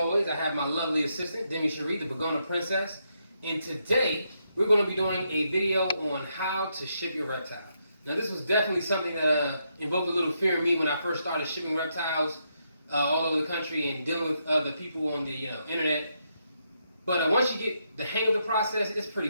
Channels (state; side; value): inverted; both; correlation -0.79